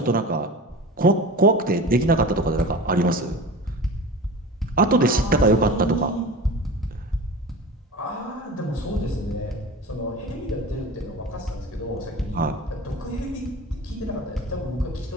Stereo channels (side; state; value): both; normal; correlation 0.34